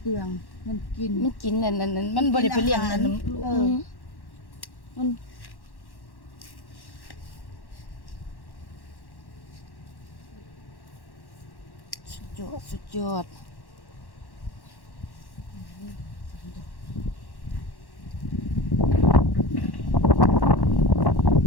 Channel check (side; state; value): right; late; 1.1 ms